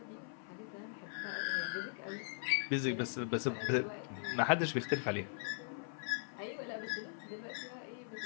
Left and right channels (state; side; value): silent; right; 51 dB below the other